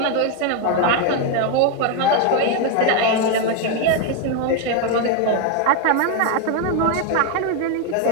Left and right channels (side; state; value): both; different; correlation 0.01